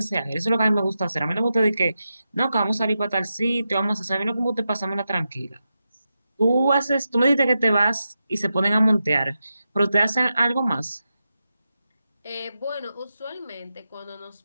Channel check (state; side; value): inverted; both; correlation -0.89